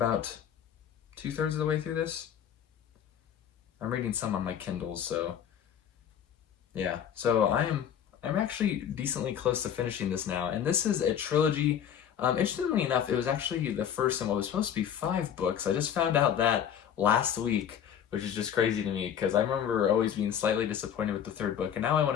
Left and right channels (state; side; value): quieter; right; 9.1 dB